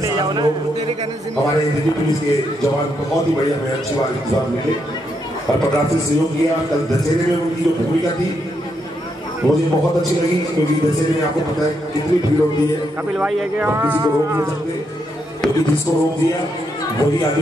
लोग। हमारे दिल्ली पुलिस के जवान बहुत ही बढ़िया, मैं अच्छी बात इंतजाम मिले, हर प्रकार से सहयोग किया। कल दशहरे में उनकी जो भूमिका थी मुझे बहुत अच्छी लगी, क्योंकि दशहरे में आपको पता है कितनी भीड़ होती है, कपिल भाई है क्या? किसी को रोक नहीं सकते, क्योंकि जिसको रोक दिया वही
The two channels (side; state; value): both; normal; correlation 0.79